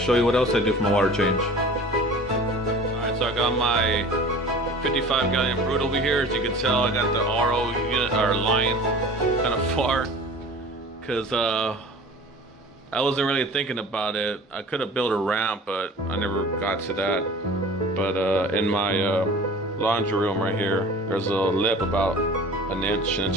you what else I do for my water change. Alright, so I got my 55 gallon Brute over here. As you can tell, I got the RO unit or line kind of far, because I wasn't really thinking about it. I could have built a ramp, but I never got to that. But in my laundry room right here, there's a lip about an inch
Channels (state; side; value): normal; both; correlation 0.42